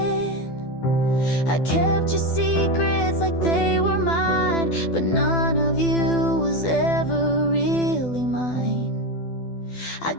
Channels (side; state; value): right; late; 12 ms